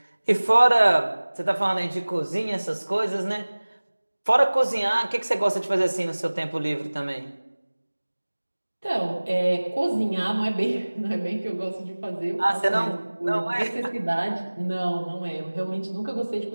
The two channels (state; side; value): inverted; both; correlation -1.00